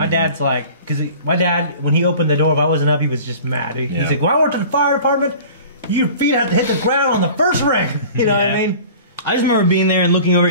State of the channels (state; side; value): inverted; both; correlation -0.43